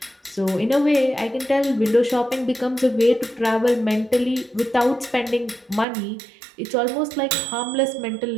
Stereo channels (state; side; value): drops out; left; at 5.9 s